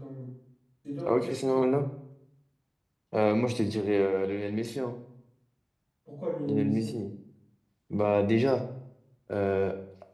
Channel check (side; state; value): both; identical; correlation 1.00